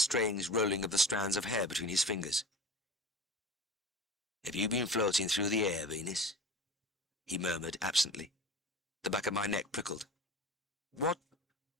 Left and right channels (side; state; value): both; normal; correlation 0.35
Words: rolling of the strands of hair between his fingers. Have you been floating through the air, Venus? He murmured absently. The back of my neck prickled.